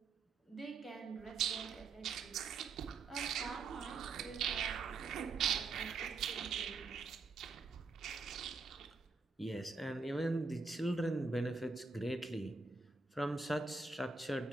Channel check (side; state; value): left; quieter; 4.1 dB